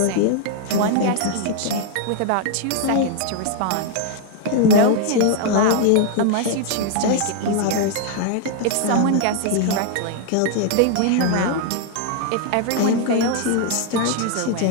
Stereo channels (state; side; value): different; both; correlation 0.00